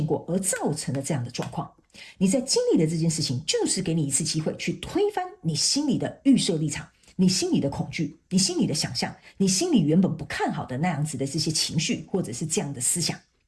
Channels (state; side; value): identical; both; correlation 1.00